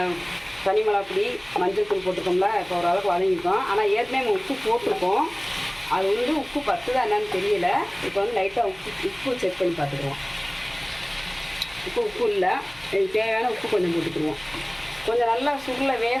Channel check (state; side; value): noise; left; hum, 25 dB below the sound